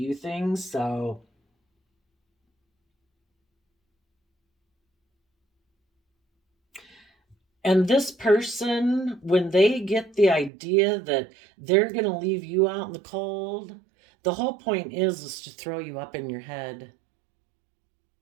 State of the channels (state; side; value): drops out; left; at 10.5 s